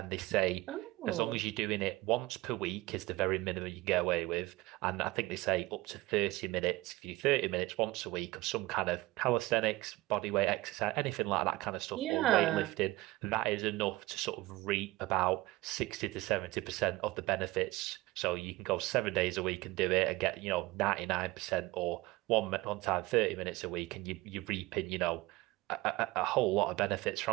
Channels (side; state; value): left; quieter; 19.9 dB